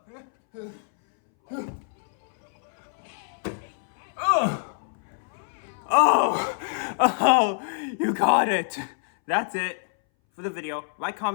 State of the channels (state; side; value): silent; right; 60 dB below the other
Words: Oh, you got it. That's it for the video. Like,